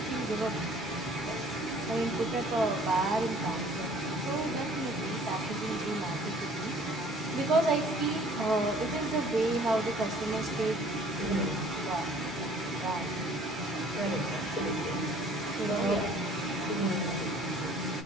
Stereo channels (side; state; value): both; normal; correlation 0.54